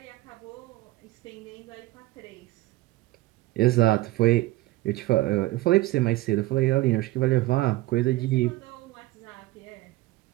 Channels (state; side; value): quieter; left; 18.2 dB